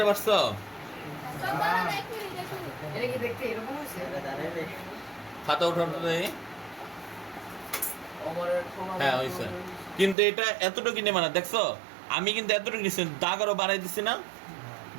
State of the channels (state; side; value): drops out; left; at 10.2 s